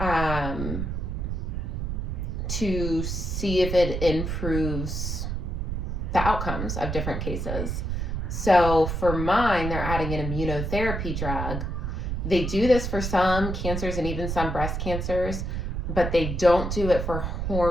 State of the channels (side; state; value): right; noise; rumble, 3 dB below the sound